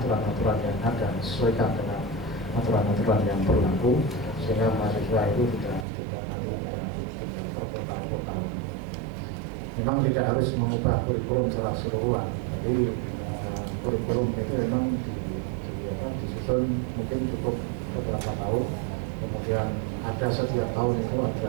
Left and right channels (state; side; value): drops out; left; at 5.9 s